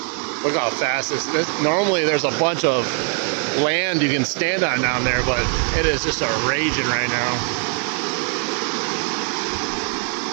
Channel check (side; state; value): left; quieter; 36.5 dB